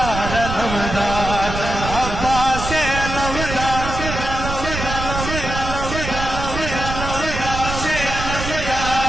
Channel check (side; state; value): right; noise; rumble, 5 dB below the sound